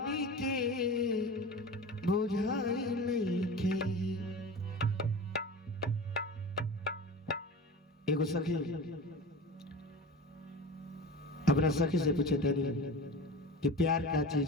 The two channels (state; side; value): normal; both; correlation 0.32